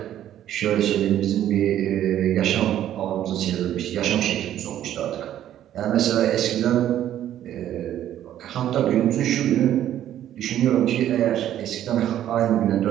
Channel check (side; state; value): left; quieter; 11.6 dB